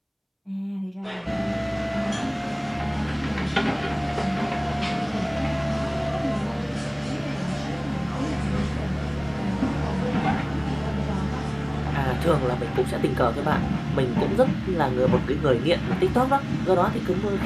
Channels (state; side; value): identical; both; correlation 1.00